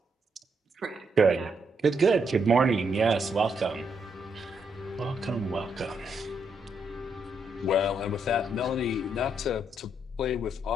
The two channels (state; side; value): normal; both; correlation 0.77